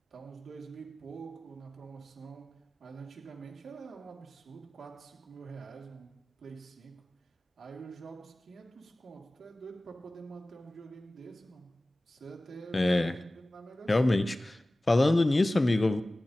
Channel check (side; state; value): both; normal; correlation 0.97